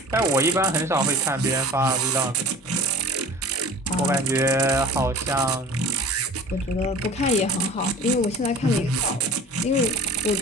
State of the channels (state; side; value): normal; both; correlation 0.42